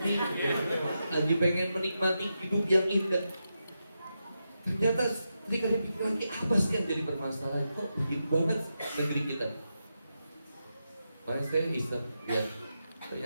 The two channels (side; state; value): both; inverted; correlation -0.87